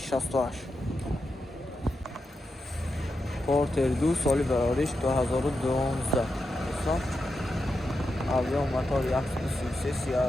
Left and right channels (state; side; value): normal; both; correlation 0.87